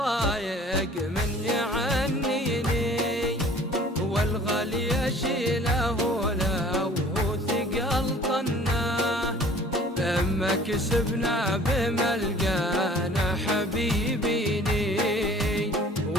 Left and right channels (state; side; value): normal; both; correlation 0.50